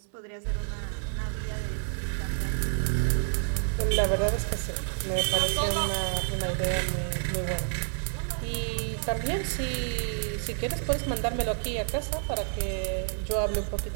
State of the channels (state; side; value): silent; left; 59 dB below the other